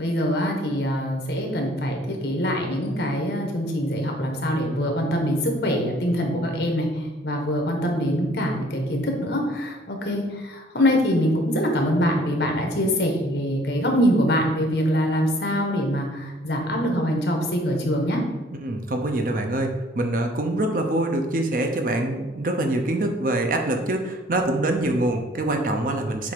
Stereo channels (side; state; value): both; normal; correlation 0.57